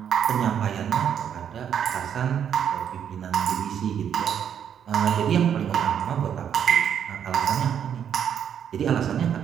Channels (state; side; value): quieter; left; 8.7 dB